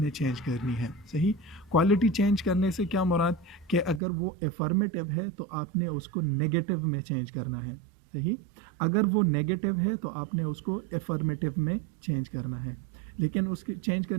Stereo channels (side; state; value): left; drops out; at 4.0 s